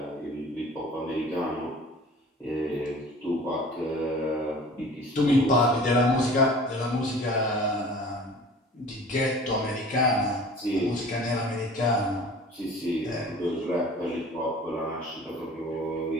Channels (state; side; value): normal; both; correlation 0.44